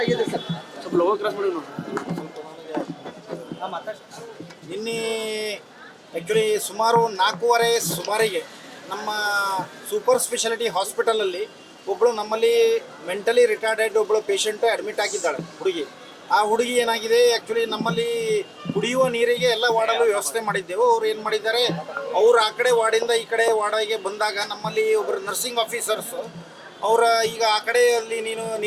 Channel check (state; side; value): identical; both; correlation 1.00